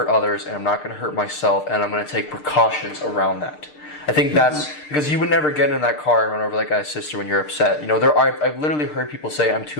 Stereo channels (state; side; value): late; right; 6.6 ms